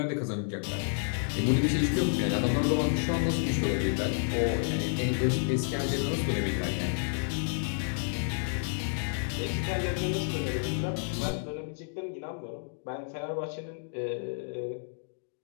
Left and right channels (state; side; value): silent; right; digital silence